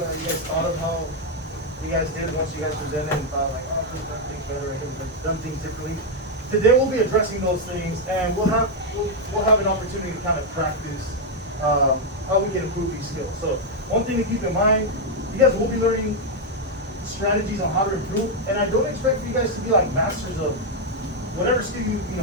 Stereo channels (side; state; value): both; normal; correlation 0.01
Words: thought of how you guys did once you guys presented and thought like, oh, I could have done things better, I could have done things differently. Today we'll be addressing those things, and we'll have an opportunity to kind of practice how we can improve these skills. So one thing to keep in mind, you guys will be learning strategies on how to improve, and I don't expect you guys to be like masters of whatever skill